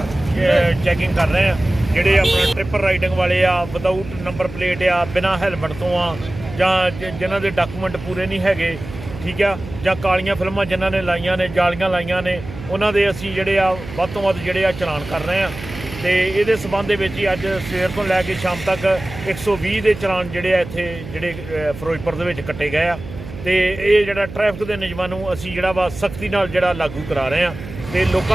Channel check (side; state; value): right; noise; hum, 13 dB below the sound